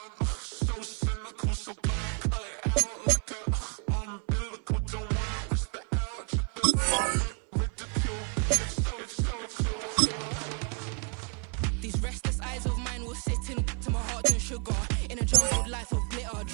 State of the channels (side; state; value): left; quieter; 38.2 dB